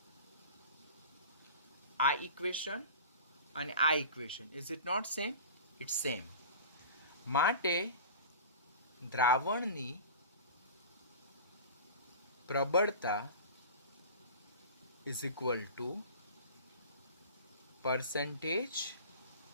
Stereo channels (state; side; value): inverted; both; correlation -0.37